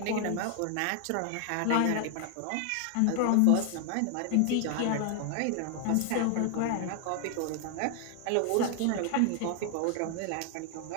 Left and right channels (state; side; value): different; both; correlation 0.00